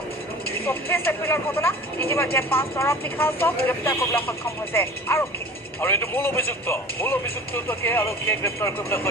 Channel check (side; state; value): both; normal; correlation 0.40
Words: 24 এপ্ৰিলৰ ঘটনা। ইতিমধ্যে 5 নিশাচক গ্ৰেপ্তাৰ কৰিবলৈ সক্ষম হৈছে আৰক্ষী। আৰু এইটো মূল অভিযুক্তকে আৰক্ষীয়ে গ্ৰেপ্তাৰ কৰিবলৈ